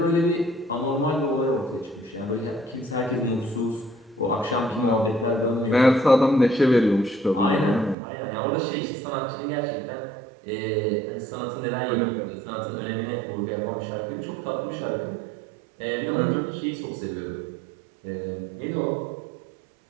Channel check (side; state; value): left; drops out; at 8.0 s